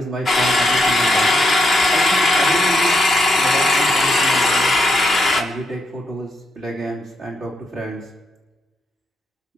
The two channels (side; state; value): both; normal; correlation 0.80